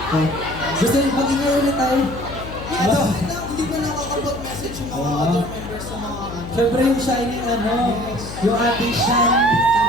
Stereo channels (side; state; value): left; noise; hum, 11 dB below the sound